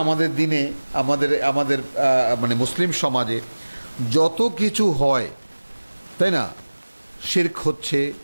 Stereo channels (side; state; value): both; inverted; correlation -1.00